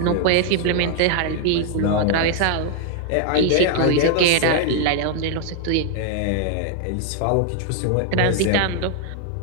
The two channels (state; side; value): different; both; correlation 0.00